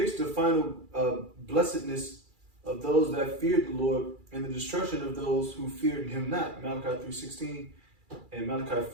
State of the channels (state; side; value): late; left; 2.3 ms